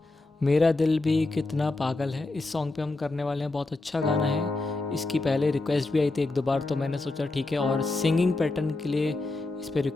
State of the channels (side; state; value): right; quieter; 3.1 dB